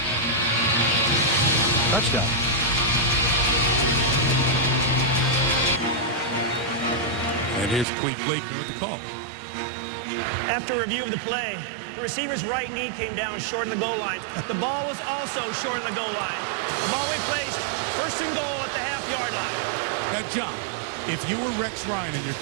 Touchdown. And here's Clete Blakeman with the call. After review of the play, the receiver's right knee came down short of the goal line. The ball was also short of the goal line. The ball we placed, first and goal at the half-yard line. Now, John, if you were Rex Ryan and you're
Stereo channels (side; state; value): left; drops out; at 7.9 s